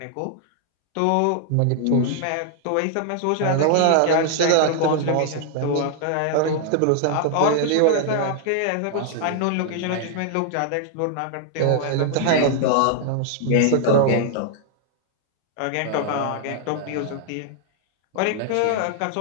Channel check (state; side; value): different; both; correlation 0.00